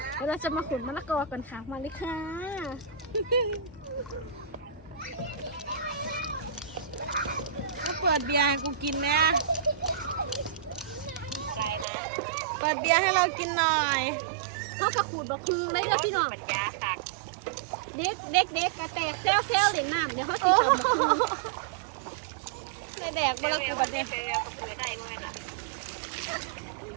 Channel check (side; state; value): left; drops out; at 11.9 s